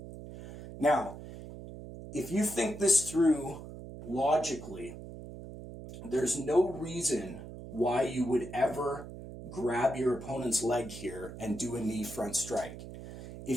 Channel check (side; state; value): right; noise; hum, 12 dB below the sound